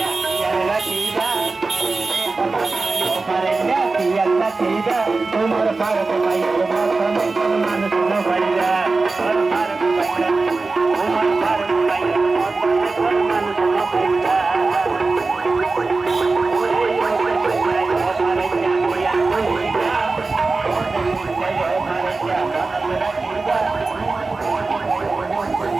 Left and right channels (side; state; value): left; quieter; 3.8 dB